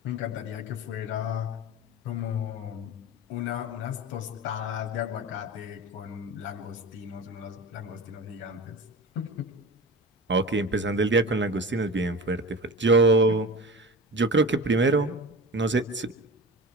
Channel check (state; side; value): normal; both; correlation 0.32